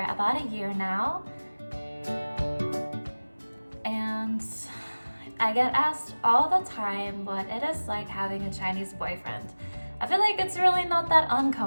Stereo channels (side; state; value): both; inverted; correlation -1.00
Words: about a year now and I get asked all the time what it is like having a Chinese boyfriend. I feel like it's really not that